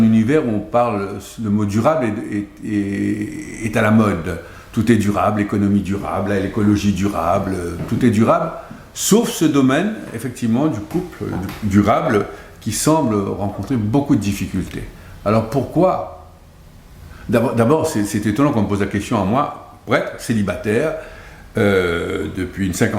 univers où on parle, le mot durable est à la mode. Tout est durable, l'économie durable, l'écologie durable, tout est durable, sauf ce domaine, effectivement, du couple durable qui semble rencontrer beaucoup de difficultés. Alors pourquoi? D'abord, c'est étonnant qu'on me pose la question à moi, prêtre, célibataire, depuis une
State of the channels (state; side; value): identical; both; correlation 1.00